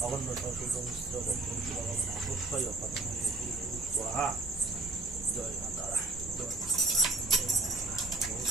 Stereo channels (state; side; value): quieter; left; 3.1 dB